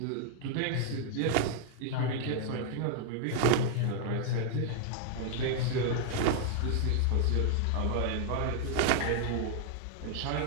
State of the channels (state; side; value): different; both; correlation 0.00